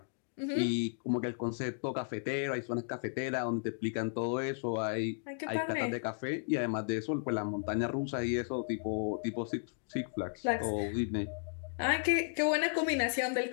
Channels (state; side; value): silent; right; digital silence